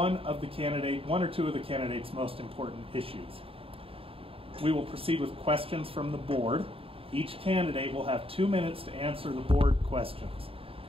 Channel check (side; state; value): left; late; 0.27 ms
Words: or two of the candidate's most important issues. We will proceed with questions from the board. Each candidate will have 2 minutes to answer the board questions.